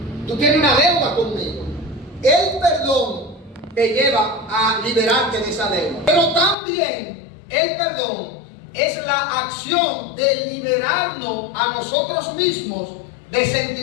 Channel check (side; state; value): right; drops out; at 6.6 s